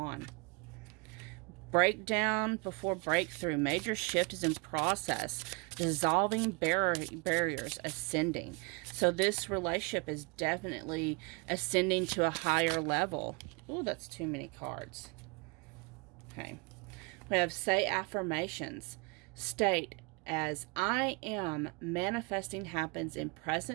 Breakdown before breakthrough. Major shift is in process. Dissolving barriers, ascending. So this relationship is definitely ascending to a higher level. Ooh, that's too many cards. Okay. We have say affirmations. State as I am manifesting happens in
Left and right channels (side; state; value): left; quieter; 30.7 dB